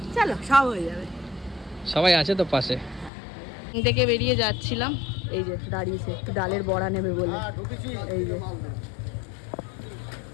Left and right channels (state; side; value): drops out; right; at 3.1 s